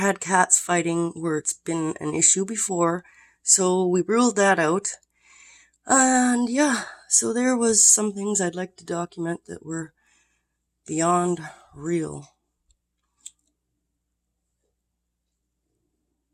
cats fighting where it's been an issue before, so we ruled that out. And yeah, so there was some things I'd like to document that were beyond real.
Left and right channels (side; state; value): both; identical; correlation 1.00